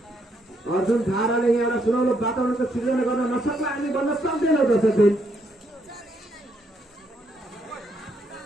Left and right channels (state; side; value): normal; both; correlation 0.74